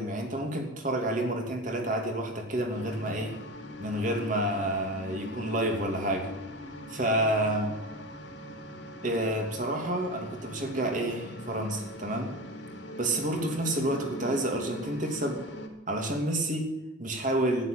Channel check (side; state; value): both; normal; correlation 0.30